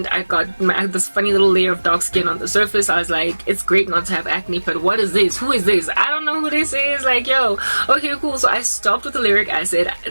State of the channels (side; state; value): both; inverted; correlation -1.00